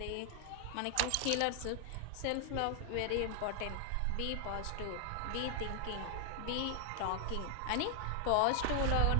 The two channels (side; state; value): both; different; correlation 0.00